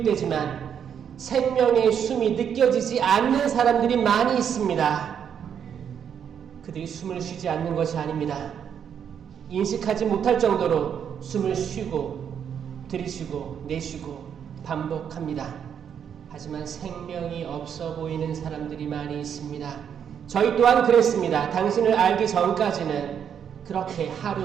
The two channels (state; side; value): quieter; left; 8.2 dB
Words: 생명의 숨이 느껴지지 않는 사람들이 많이 있습니다. 그들이 숨을 쉬지 않는 것이 아닙니다. 인식하지 못할 정도로 숨을 쉬고 들이쉬고 내쉬고 반복합니다. 하지만 생명이 없어 보이는 사람들이 많이 있습니다. 저희 또한 그랬습니다. 당신을 알기 전까지는 그렇게